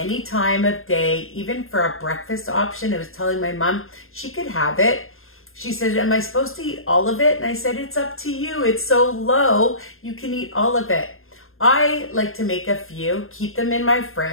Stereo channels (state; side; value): late; right; 0.61 ms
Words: time of day, even for a breakfast option. I was telling my mom she could have it. She said, am I supposed to eat all of it? And I said, it's up to you. It's so low, you can eat all of it. I like to make a few, keep them in my